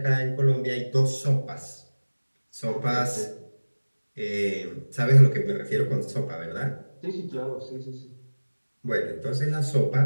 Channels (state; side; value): inverted; both; correlation -1.00